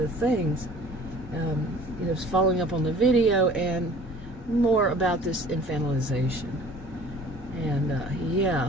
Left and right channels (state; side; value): normal; both; correlation 0.49